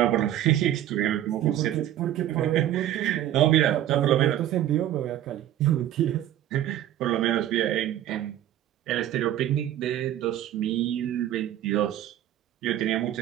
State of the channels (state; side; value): quieter; left; 12.3 dB